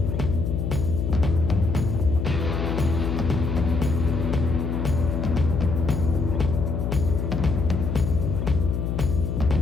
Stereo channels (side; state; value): left; noise; hum, 1 dB below the sound